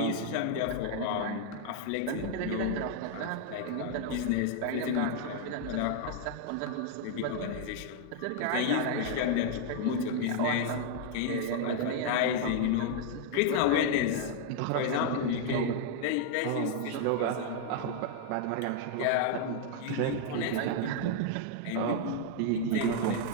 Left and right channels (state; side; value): different; both; correlation 0.00